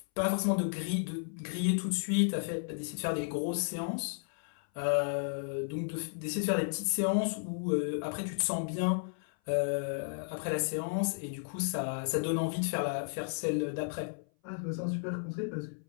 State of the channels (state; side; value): silent; right; 56 dB below the other